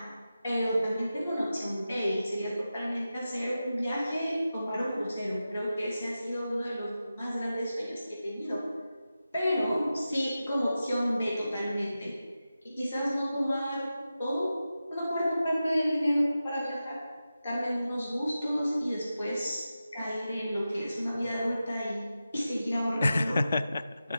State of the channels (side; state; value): both; inverted; correlation -0.93